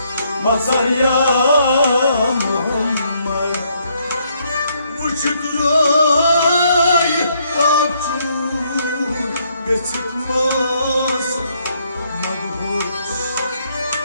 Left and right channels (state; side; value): inverted; both; correlation -0.72